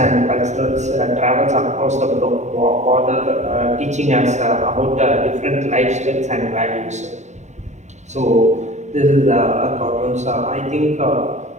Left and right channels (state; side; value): late; left; 0.34 ms